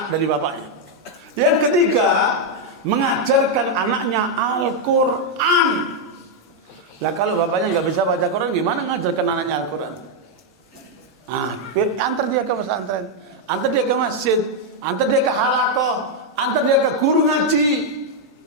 dari bapaknya. Yang ketiga, mengajarkan anaknya Al-Quran. Lah kalau bapaknya nggak bisa baca Quran, gimana ngajarkan anaknya Al-Quran? Antar dia ke pesantren, antar dia ke masjid, antar dia ke halakoh, antar dia ke guru ngaji.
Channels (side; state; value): both; normal; correlation 0.00